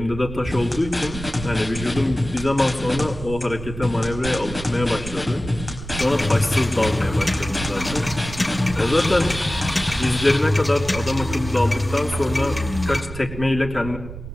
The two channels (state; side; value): noise; right; rumble, 10 dB below the sound